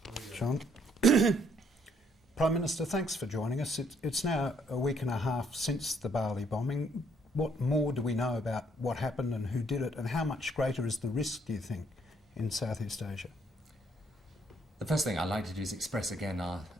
John. Prime Minister, thanks for joining us. It's now a week and a half since the Bali bombing. What more do we know about what happened and who did it, and how much greater is the risk, do you think, in Southeast Asia? The first thing I'd like to do is express again our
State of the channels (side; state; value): both; normal; correlation 0.68